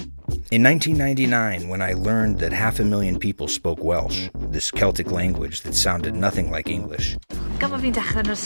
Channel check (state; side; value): inverted; both; correlation -1.00